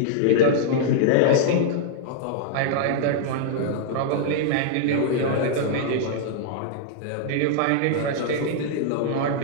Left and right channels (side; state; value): both; different; correlation -0.01